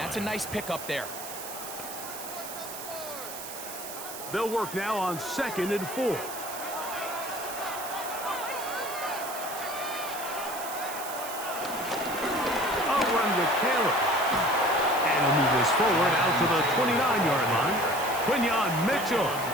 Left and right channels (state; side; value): noise; right; hiss, 10 dB below the sound